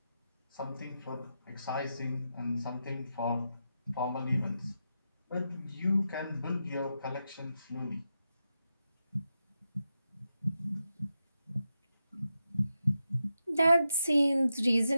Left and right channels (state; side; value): inverted; both; correlation -0.87